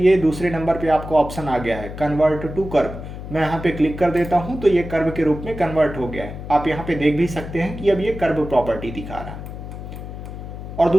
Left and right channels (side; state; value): left; noise; hum, 10 dB below the sound